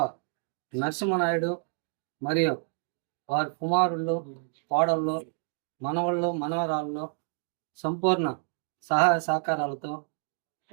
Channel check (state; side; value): silent; left; 59 dB below the other